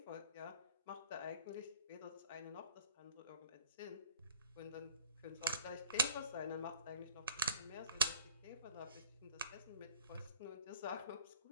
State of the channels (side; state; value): both; inverted; correlation -0.44